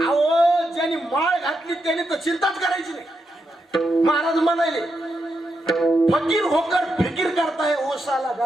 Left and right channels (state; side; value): normal; both; correlation 0.84